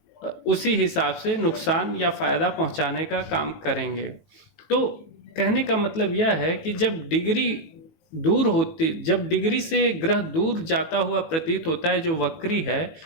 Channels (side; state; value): right; late; 18 ms